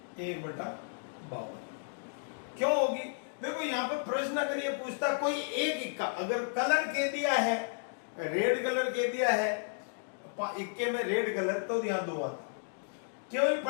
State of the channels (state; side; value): silent; right; digital silence